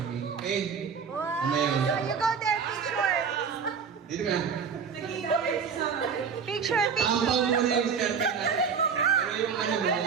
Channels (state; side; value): quieter; left; 6.3 dB